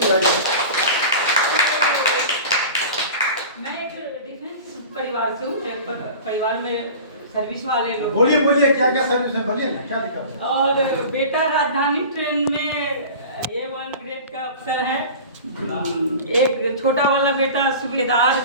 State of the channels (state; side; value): inverted; both; correlation -0.37